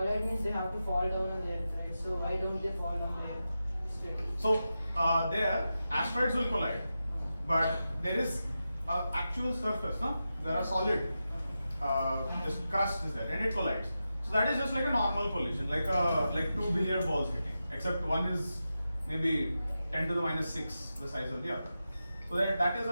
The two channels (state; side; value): inverted; both; correlation -0.91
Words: means they have to fall down on the Earth, right? So why don't they fall on the Earth straight? So there, asteroids will collide, but there is an actual surface, no? There are solid, this crust is there, and it collides. So that is just like a normal collision, like two billiard balls hitting, except one is maybe 10 to the minus 6 the size of the other. So that is